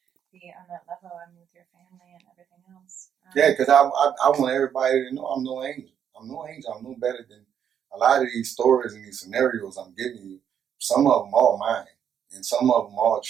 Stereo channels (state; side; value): quieter; left; 8.6 dB